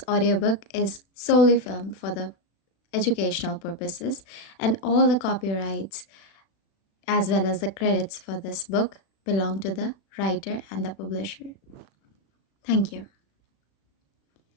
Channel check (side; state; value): right; late; 36 ms